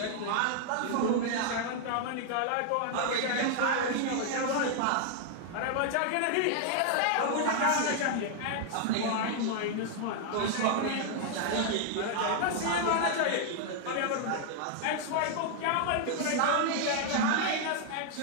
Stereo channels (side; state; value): both; different; correlation 0.00